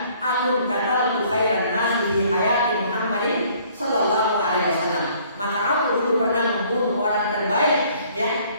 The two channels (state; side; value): inverted; both; correlation -0.59